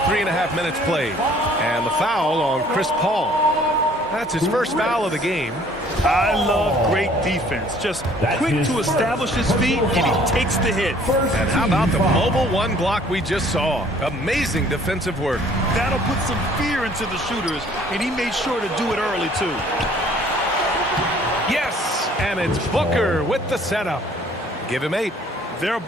3.5 minutes played. And the foul on Chris Paul. That's his first foul of the game. I love great defense. Just quick to establish his feet, and he takes the hit. And how about the mobile 1 block we just saw? Amazing defensive work. That'll put some fear into the shooters, and he made sure to do it early, too. Yes, and it's Booker with the setup. Give him 8. Their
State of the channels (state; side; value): normal; both; correlation 0.56